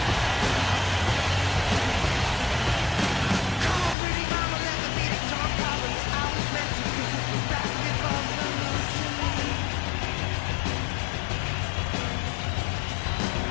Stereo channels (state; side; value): drops out; right; at 4.0 s